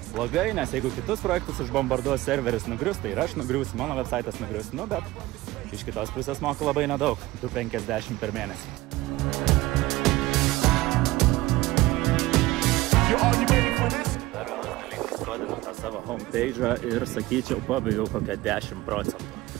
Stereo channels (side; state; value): left; quieter; 18.5 dB